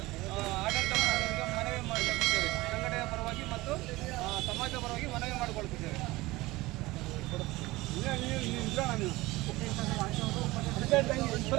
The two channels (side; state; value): left; quieter; 20.0 dB